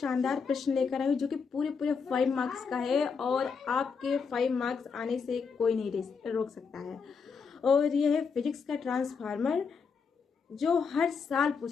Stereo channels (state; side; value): quieter; right; 5.6 dB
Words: प्रश्न लेकर आई हूँ जो कि पूरे पूरे 5 मार्क्स का है और आपके 5 मार्क्स आने से कोई नहीं रोक सकता है। और यह है फिजिक्स का ट्रांसफार्मर जो हर साल